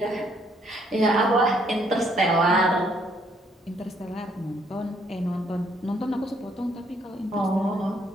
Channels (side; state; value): both; normal; correlation 0.68